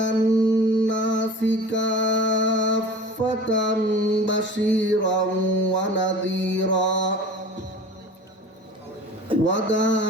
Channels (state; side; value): normal; both; correlation 0.39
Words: الناس كافة بشيرا ونذيرا